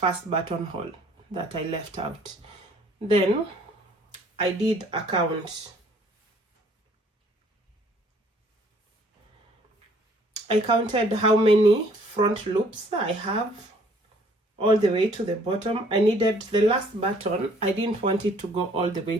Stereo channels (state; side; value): normal; both; correlation 0.59